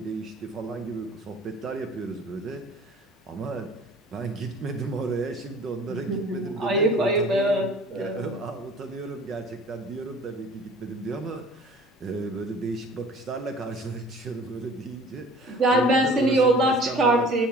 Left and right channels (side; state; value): both; normal; correlation 0.48